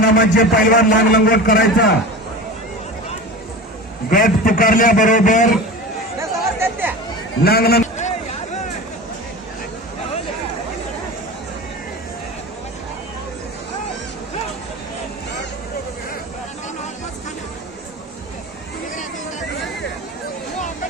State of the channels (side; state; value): both; normal; correlation 0.32